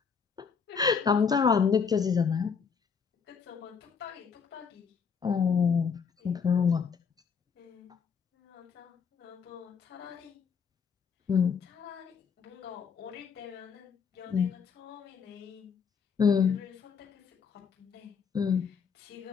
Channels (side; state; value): right; quieter; 6.2 dB